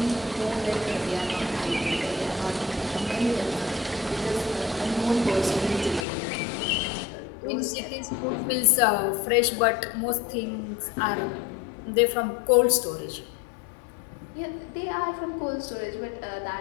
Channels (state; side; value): drops out; right; at 6.1 s